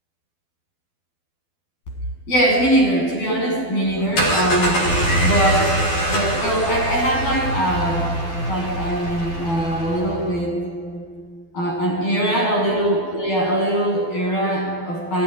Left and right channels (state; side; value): late; right; 12 ms